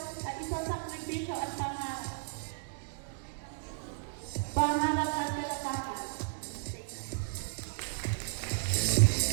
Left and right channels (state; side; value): silent; left; digital silence